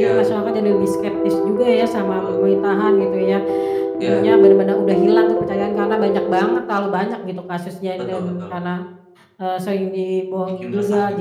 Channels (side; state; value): both; identical; correlation 1.00